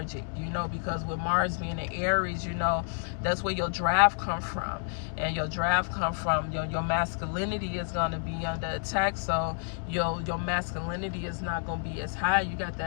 you know, because with Mars being in Aries, you know, that's where your drive come from, and your drive come from your masculinity is going to be under attack. So your masculinity is not going to be as high. You got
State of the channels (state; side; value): silent; right; 56 dB below the other